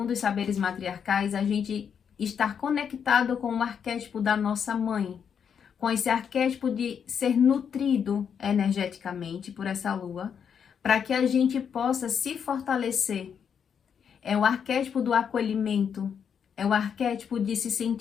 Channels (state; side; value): quieter; right; 7.4 dB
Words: os saberes matriarcais, a gente estar conectado com o arquétipo da nossa mãe, com esse arquétipo de ser nutrido energeticamente por essa lua, para que a gente possa se fortalecer. É o arquétipo do acolhimento, é o arquétipo de se